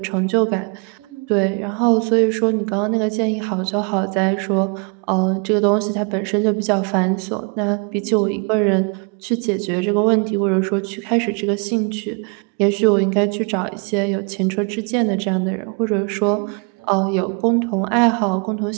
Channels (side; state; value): left; quieter; 34.1 dB